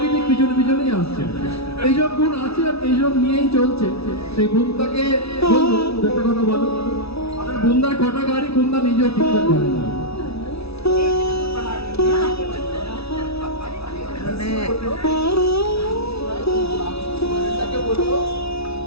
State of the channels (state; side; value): late; right; 0.78 ms